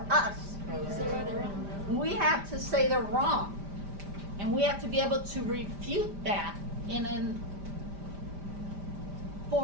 us? We have to say they're wrong. And we have to be able to refute that in a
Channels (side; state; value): left; late; 5.0 ms